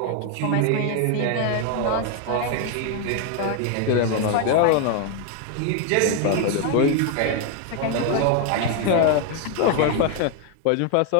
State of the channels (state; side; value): different; both; correlation 0.01